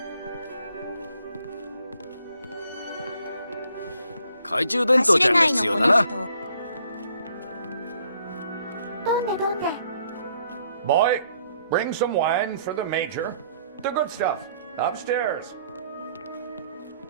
懐中電灯走れちゃんがないのこの必要だな。人。どんでどんで。 Boy, bring some wine for the Major. The good stuff, upstairs.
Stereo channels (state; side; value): inverted; both; correlation -0.65